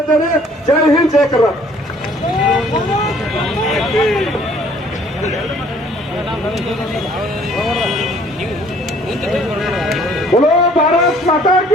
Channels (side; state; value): both; normal; correlation 0.58